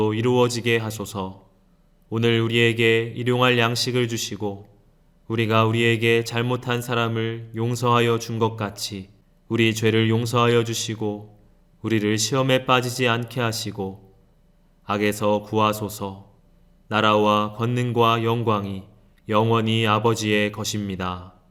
이루어지게 하소서. 오늘 우리에게 일용할 양식을 주시고 우리가 우리에게 잘못한 사람을 용서하여 준 것 같이 우리 죄를 용서하여 주시고 우리를 시험에 빠지지 않게 하시고 악에서 구하소서. 나라와 권능과 영광이 영원히 아버지의 것입니다.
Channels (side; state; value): both; identical; correlation 1.00